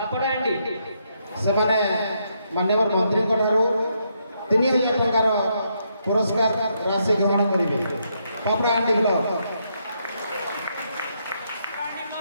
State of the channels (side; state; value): both; inverted; correlation -0.77